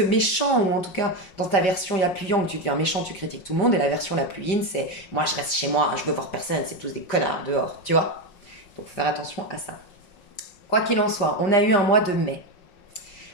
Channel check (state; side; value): late; right; 5.1 ms